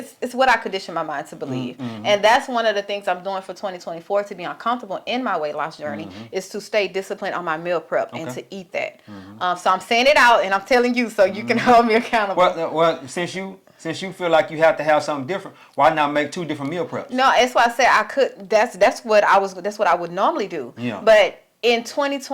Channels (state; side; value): identical; both; correlation 1.00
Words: what I condition my mind to believe, and that's one of the things I'm doing for 2024 to be uncomfortable in my weight loss journey is to stay disciplined on my meal prep and to eat that. So I'm saying it out and I'm telling you so you can hold me accountable. Well, since you feel like you have to have something different, why not make 2 different meal preps? No, that's why I said I could. That's what I would normally do. Yeah. But in